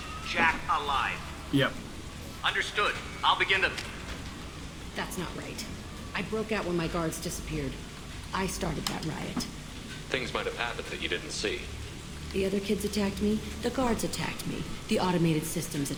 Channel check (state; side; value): identical; both; correlation 1.00